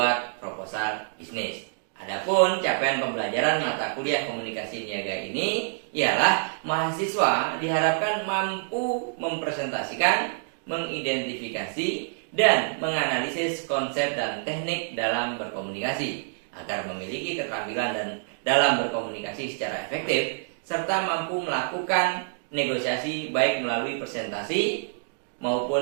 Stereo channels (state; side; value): silent; left; digital silence